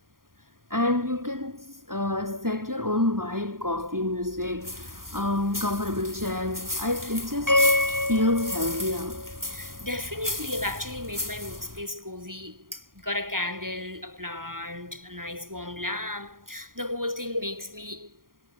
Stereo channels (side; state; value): left; late; 0.91 ms